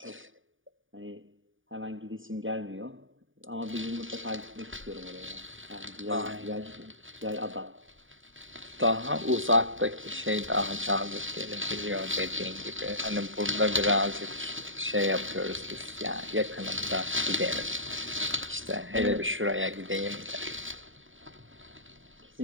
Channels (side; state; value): left; late; 0.57 ms